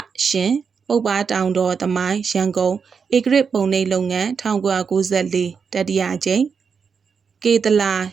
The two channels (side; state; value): left; quieter; 6.0 dB